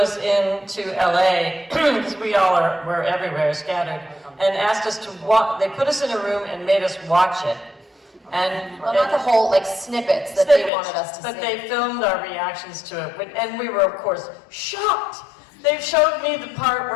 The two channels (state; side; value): drops out; right; at 10.7 s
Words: into LA, because we're everywhere, scattered, and asked us to watch, they put us in a room and made us watch it. And Well, not the whole, like, snippets that they wanted us to see. but they filmed our reactions to it, and we were, of course, shocked. They showed me the part